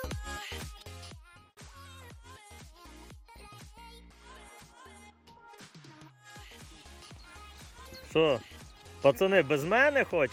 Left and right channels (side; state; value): both; identical; correlation 1.00